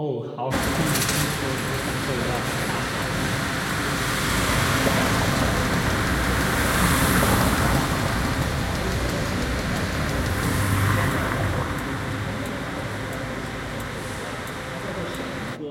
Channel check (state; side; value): identical; both; correlation 1.00